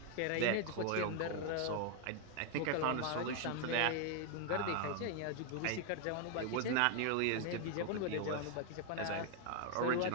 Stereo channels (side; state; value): both; different; correlation 0.00